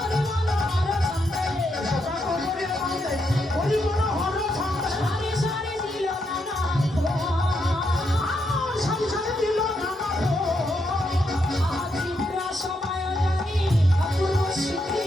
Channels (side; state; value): both; normal; correlation 0.80